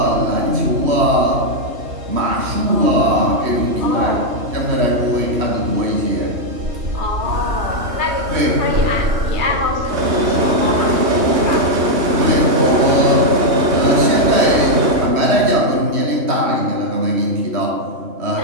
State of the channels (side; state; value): left; late; 3.1 ms